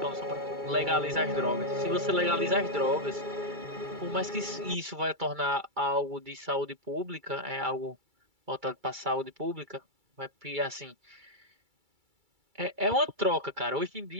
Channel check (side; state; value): left; late; 2.3 ms